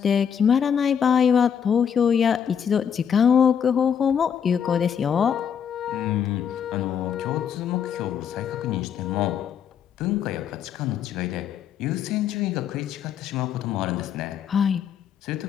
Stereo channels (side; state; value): right; quieter; 8.0 dB